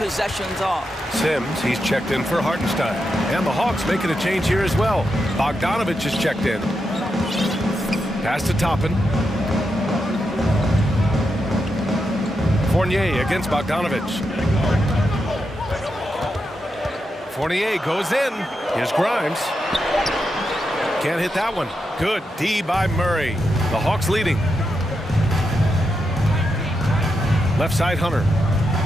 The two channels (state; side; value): normal; both; correlation 0.85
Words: off. Sims, he's checked in for Hartenstein. And the Hawks making a change here as well. Bogdanovich is checked in. Pass to Toppin. Fournier against Bogdanovich. Fournier goes in. Here's Grimes. Can't hit that one. Good D by Murray. The Hawks leading. Left side, Hunter.